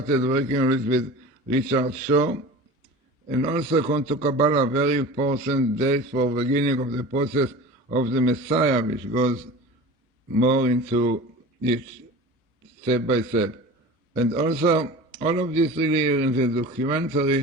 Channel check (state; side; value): normal; both; correlation 0.36